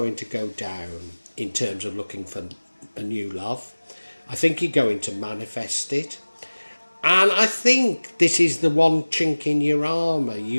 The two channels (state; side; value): inverted; both; correlation -1.00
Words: to go down in terms of looking for a new love. I think you're going to manifest it. And I think this is the one chink in your armour.